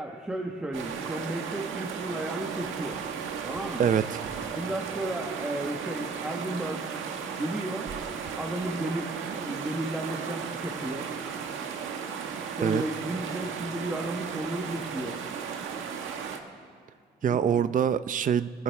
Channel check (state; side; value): quieter; left; 5.0 dB